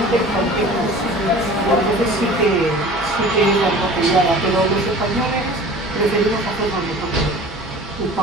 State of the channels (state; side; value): normal; both; correlation 0.43